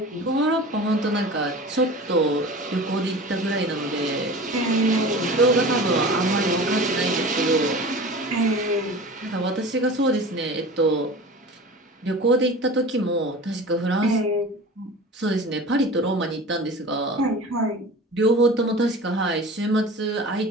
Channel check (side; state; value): both; normal; correlation 0.37